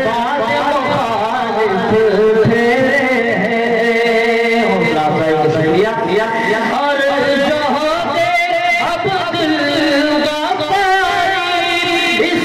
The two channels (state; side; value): identical; both; correlation 1.00